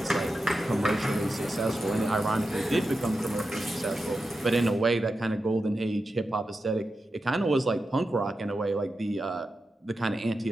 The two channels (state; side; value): normal; both; correlation 0.90